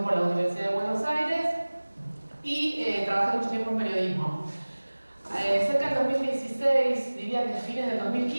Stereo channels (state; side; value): inverted; both; correlation -1.00